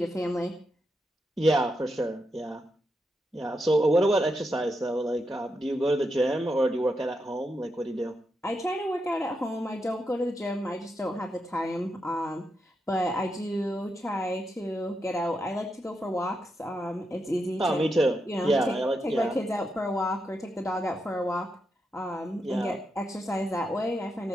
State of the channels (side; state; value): both; normal; correlation 0.84